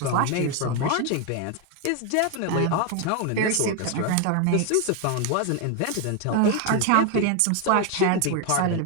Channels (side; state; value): both; different; correlation 0.01